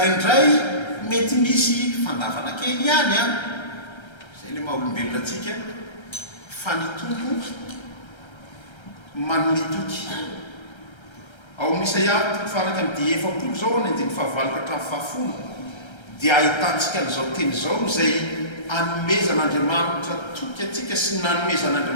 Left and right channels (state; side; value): late; right; 1.3 ms